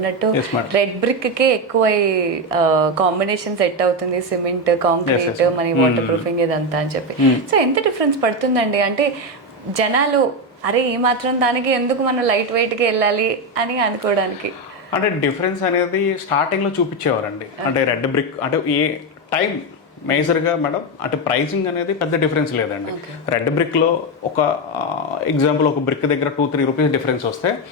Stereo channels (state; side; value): normal; both; correlation 0.10